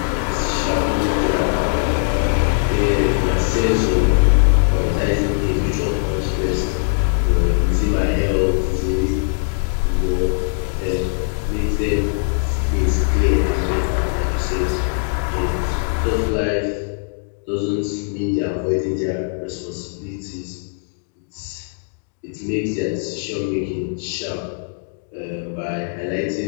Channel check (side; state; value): right; silent; digital silence